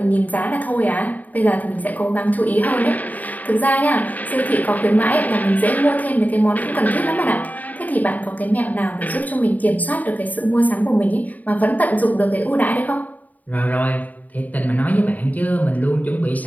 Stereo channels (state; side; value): late; right; 0.078 ms